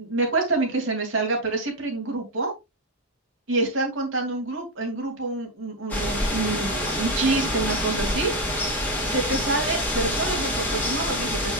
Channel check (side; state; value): both; normal; correlation 0.07